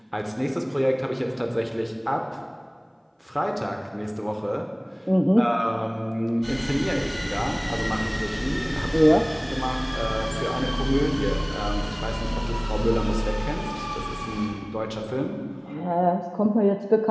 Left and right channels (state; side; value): identical; both; correlation 1.00